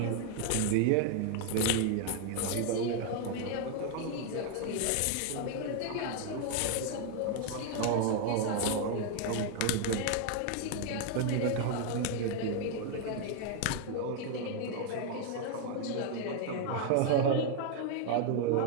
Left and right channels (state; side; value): different; both; correlation 0.00